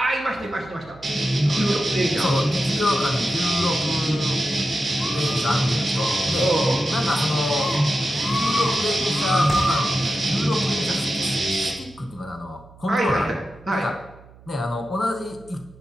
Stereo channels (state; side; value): noise; right; hum, 23 dB below the sound